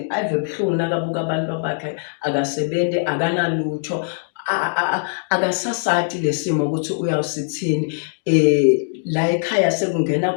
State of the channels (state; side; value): silent; right; 65 dB below the other